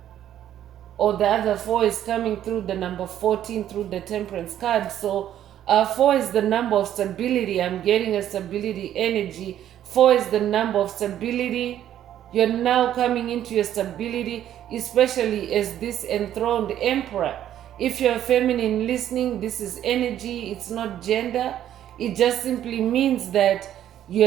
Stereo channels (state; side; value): quieter; left; 11.3 dB